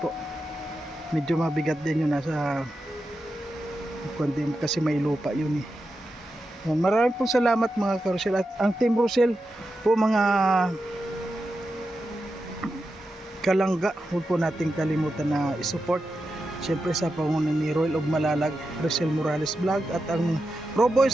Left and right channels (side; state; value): both; normal; correlation 0.89